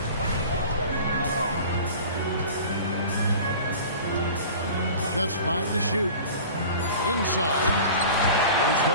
Just 5 to shoot. Inside. Here's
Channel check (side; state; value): both; inverted; correlation -0.40